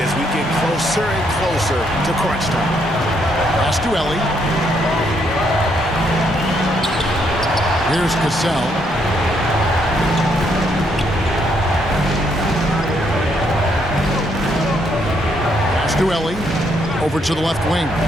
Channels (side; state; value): both; normal; correlation 0.73